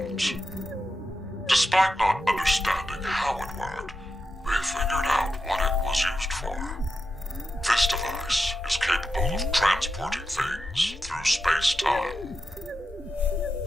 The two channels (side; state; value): both; normal; correlation 0.88